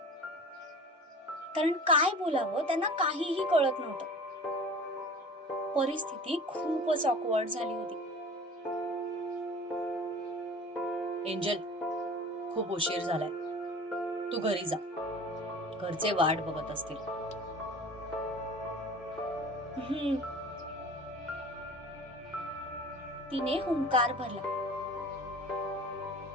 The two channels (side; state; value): both; normal; correlation 0.41